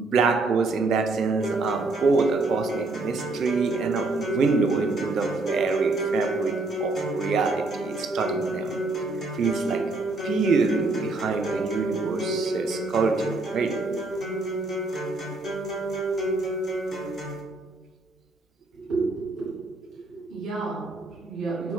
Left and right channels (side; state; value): left; quieter; 3.3 dB